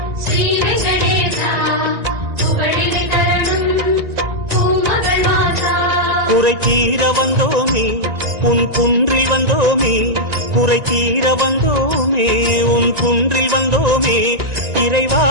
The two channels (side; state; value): left; late; 1.9 ms